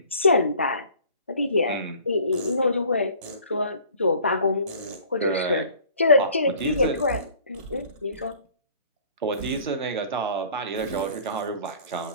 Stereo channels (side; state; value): both; inverted; correlation -0.50